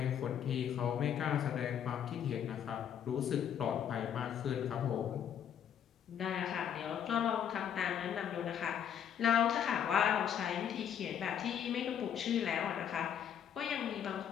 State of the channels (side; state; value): right; quieter; 8.9 dB